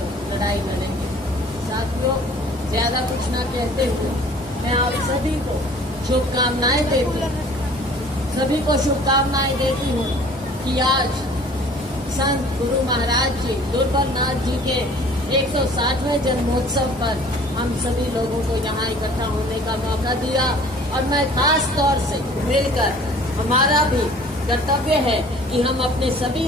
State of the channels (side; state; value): both; normal; correlation 0.50